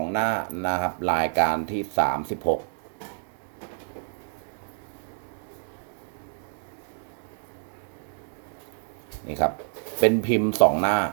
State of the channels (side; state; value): left; silent; 60 dB below the other